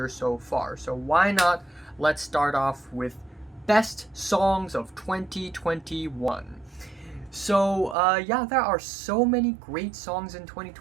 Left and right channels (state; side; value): drops out; left; at 8.0 s